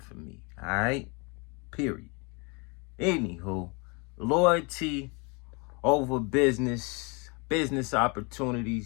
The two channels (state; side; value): quieter; right; 31.3 dB